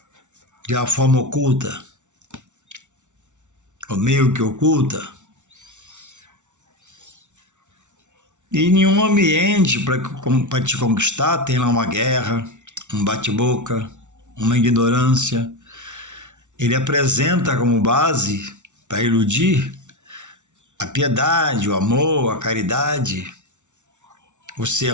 de uma forma oculta, ou meio que oculta. E nenhum ambiente para te conquistar tem lá uma guerra, um bate-boca, uma ignorância. Ele apresenta como base para iludir a piedade, o amor, a caridade, o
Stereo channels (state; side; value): late; left; 0.85 ms